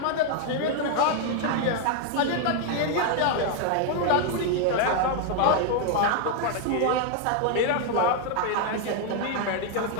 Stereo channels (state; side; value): different; both; correlation 0.00